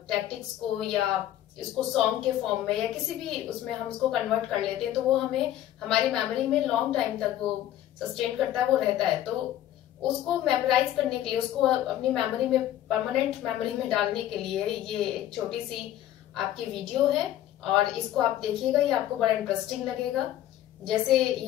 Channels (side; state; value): right; quieter; 12.6 dB